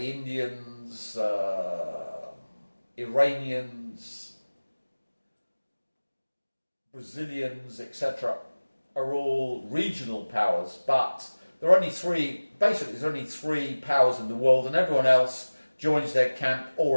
Indians, Iranians, Brazilians, etc., are all regional powers, but there are only three, basically there's only three powers in the world, and everyone else joins their camp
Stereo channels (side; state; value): both; inverted; correlation -1.00